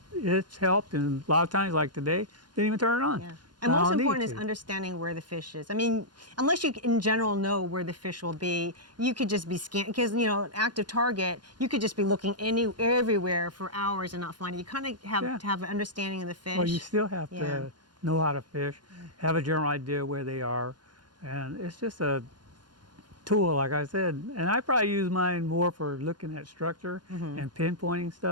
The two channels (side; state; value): left; late; 0.71 ms